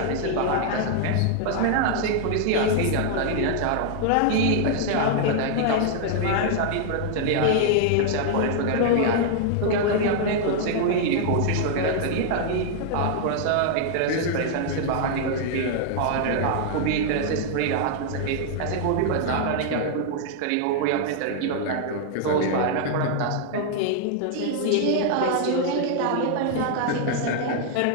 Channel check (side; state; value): both; different; correlation 0.00